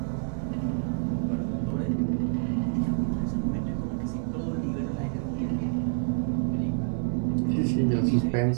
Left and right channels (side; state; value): left; silent; 60 dB below the other